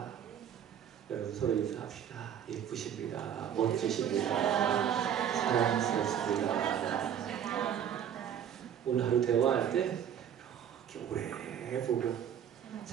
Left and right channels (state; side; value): quieter; left; 9.2 dB